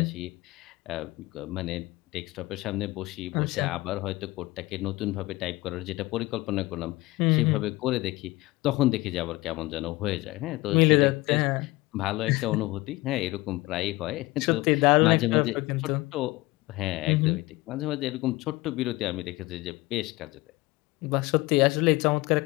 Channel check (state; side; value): quieter; right; 20.6 dB